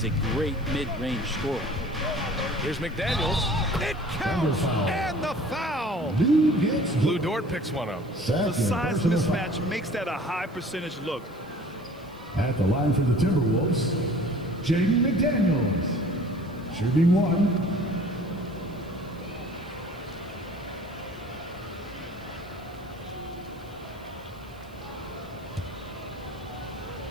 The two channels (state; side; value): noise; right; hiss, 29 dB below the sound